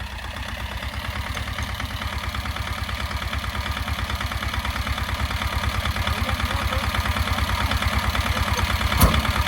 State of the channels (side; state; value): both; identical; correlation 1.00